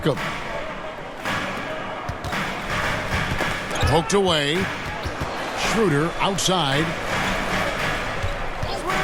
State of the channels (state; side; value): identical; both; correlation 1.00